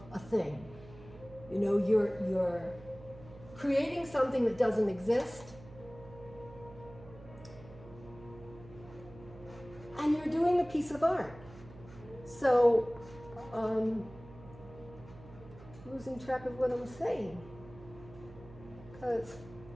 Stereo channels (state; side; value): noise; right; hum, 18 dB below the sound